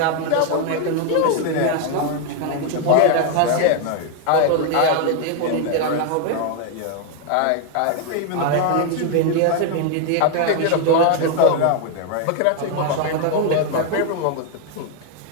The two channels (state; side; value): different; both; correlation 0.00